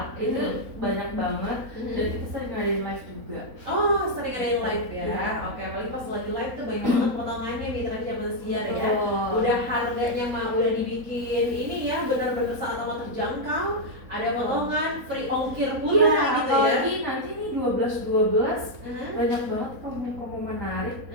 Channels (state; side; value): late; left; 4.0 ms